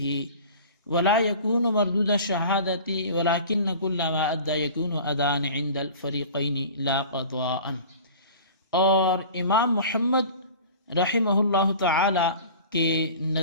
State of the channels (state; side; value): inverted; both; correlation -0.41